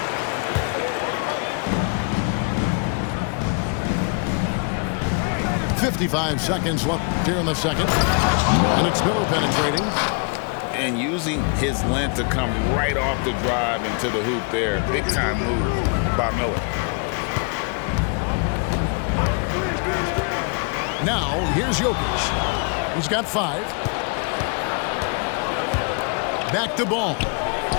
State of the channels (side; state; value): right; quieter; 38.3 dB